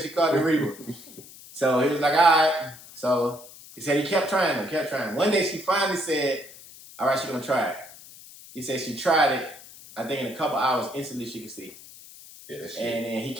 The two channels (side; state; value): left; noise; hiss, 19 dB below the sound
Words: she called it reefer. So he was like, all right. So he said he kept trying them. One day she finally said, All right, she gonna try it. He said she tried it. I think in a couple hours, instantly she could see. Yeah, that's and then he